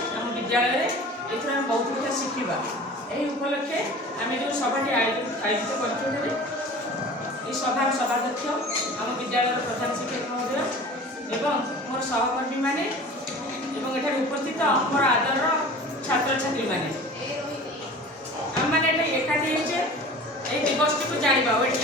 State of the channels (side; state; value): both; normal; correlation 0.40